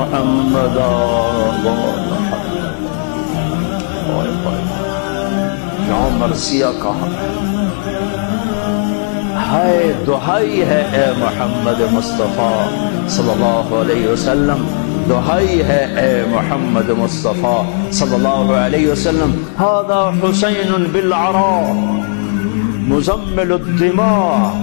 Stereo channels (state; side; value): silent; right; digital silence